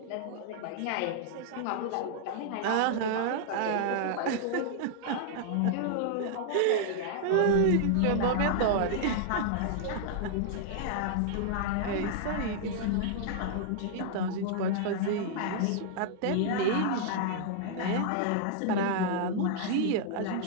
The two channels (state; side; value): different; both; correlation -0.01